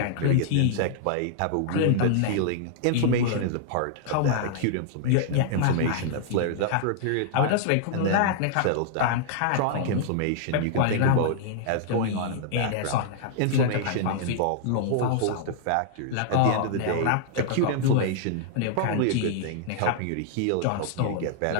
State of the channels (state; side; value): different; both; correlation -0.01